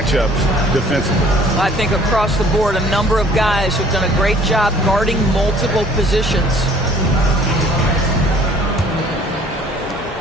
defensively. I think across the board, a number of guys have done a great job guarding multiple positions.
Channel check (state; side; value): normal; both; correlation 0.55